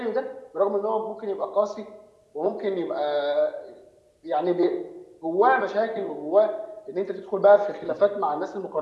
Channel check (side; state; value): both; identical; correlation 1.00